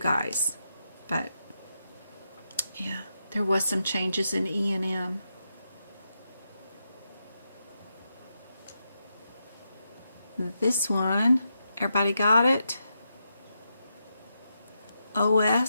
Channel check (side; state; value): both; inverted; correlation -0.85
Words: But yeah, there was some changes in E&M. This one, everybody got it?